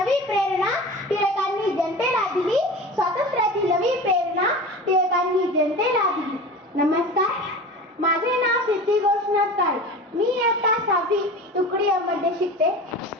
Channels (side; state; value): both; normal; correlation 0.34